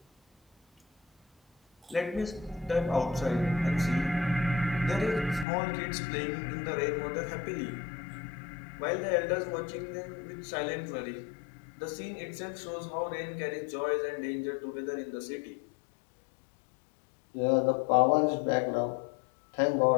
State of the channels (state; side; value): drops out; right; at 5.5 s